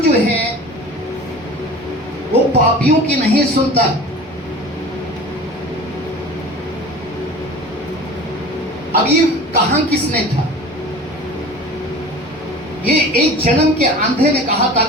जो है वो पापियों की नहीं सुनता। अब ये कहा किसने था? ये एक जन्म के अंधे ने कहा था।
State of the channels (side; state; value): both; normal; correlation 0.39